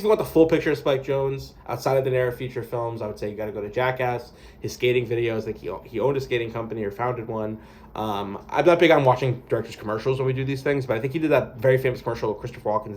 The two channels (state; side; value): identical; both; correlation 1.00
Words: you want the full picture of Spike Jonze outside of the narrative feature films, I would say you got to go to Jackass, his skating videos. Like, he owned a skating company or founded one. I'm not big on watching directors' commercials when we do these things, but I think he did that very famous commercial with Christopher